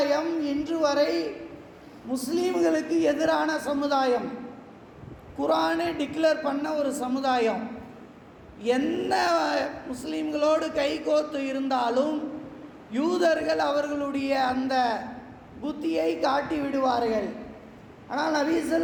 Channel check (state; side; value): identical; both; correlation 1.00